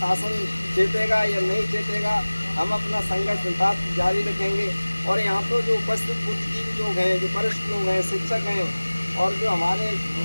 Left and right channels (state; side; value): inverted; both; correlation -1.00